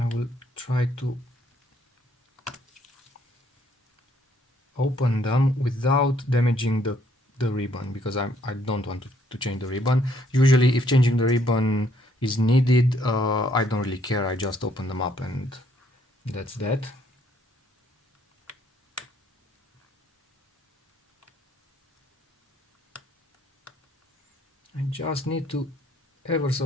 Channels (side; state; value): both; normal; correlation 0.68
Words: will try to open them without damaging the ribbon, because I don't want to change the ribbon. Usually if changing the ribbon is needed, I don't really care, I just open them up and that's that. I just need to ever